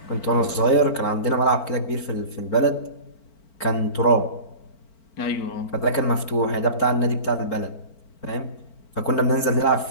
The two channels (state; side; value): late; right; 4.4 ms